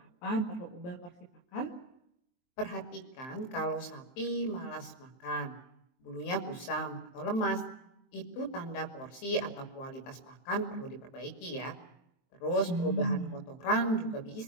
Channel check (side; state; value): right; late; 23 ms